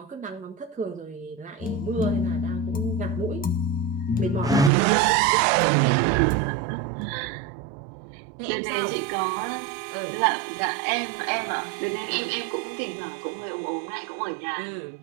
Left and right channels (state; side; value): drops out; left; at 4.7 s